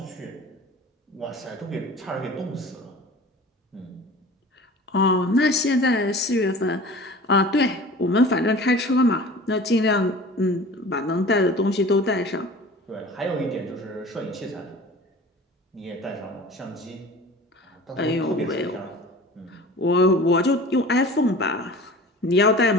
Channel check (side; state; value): both; normal; correlation 0.41